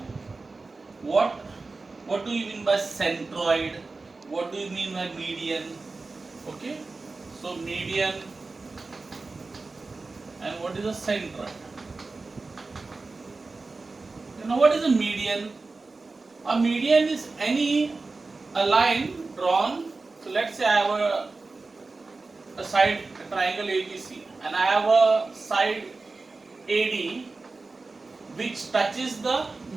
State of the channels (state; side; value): quieter; left; 3.7 dB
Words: what do you mean by centroid, what do you mean by median, okay. So median and what is a centroid? You know what is a median? A median is a line drawn. So let's say I have a side a triangle ABC and I have a side AD which touches the